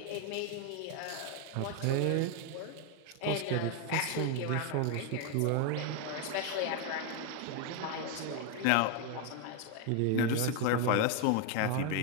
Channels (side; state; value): both; different; correlation 0.01